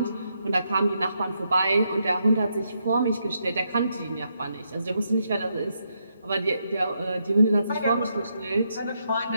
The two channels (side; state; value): both; inverted; correlation -0.80